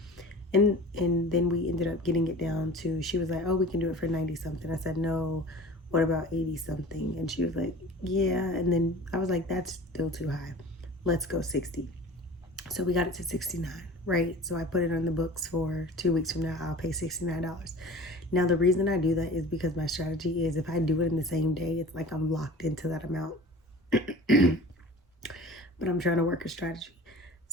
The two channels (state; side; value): normal; both; correlation 0.40